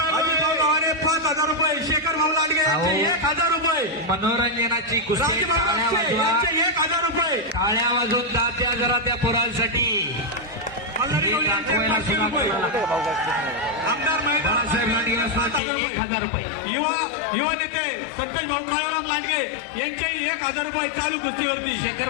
आहे. गव्हाणे 5,000 रुपये, शेखर भाऊ लांडगे यांचे 1,000 रुपये, मनोरंजनाची कुस्ती. यांचे 1,000 रुपये. टाळ्या वाजून दात्या जरा त्या पोरांसाठी. आमदार बाळासाहेब लांडगे असण्याचे 1,000 रुपये. युवा नेते संतोष भाऊ काळूराम लांडगे यांचे 1,000 रुपये चालू कुस्तीवरती. शेखर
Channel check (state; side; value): drops out; right; at 15.6 s